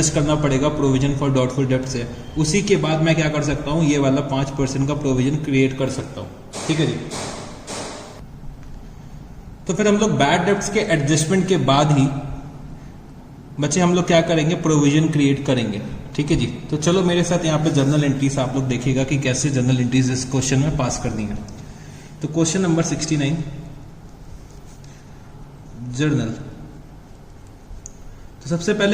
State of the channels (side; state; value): both; identical; correlation 1.00